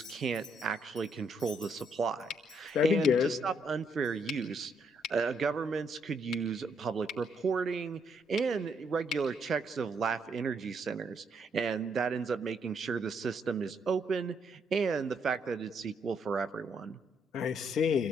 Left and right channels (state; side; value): normal; both; correlation 0.73